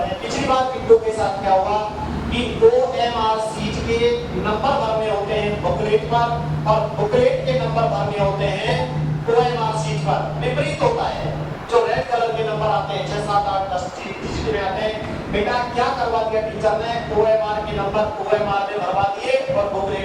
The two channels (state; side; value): identical; both; correlation 1.00